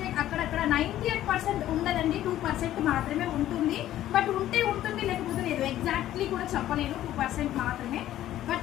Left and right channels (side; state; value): right; quieter; 13.1 dB